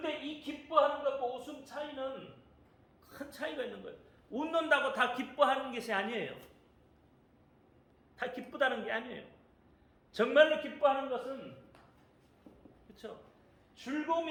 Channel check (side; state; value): both; identical; correlation 1.00